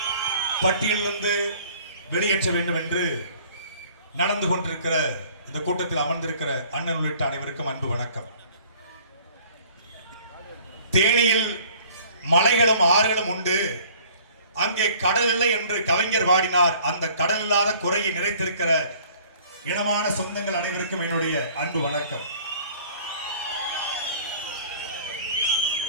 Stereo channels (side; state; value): both; inverted; correlation -0.53